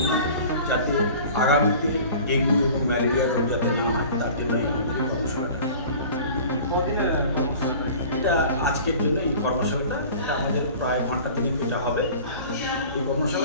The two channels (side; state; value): both; inverted; correlation -0.43